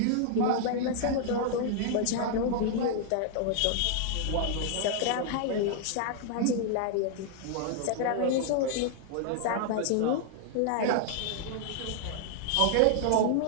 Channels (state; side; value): different; both; correlation 0.00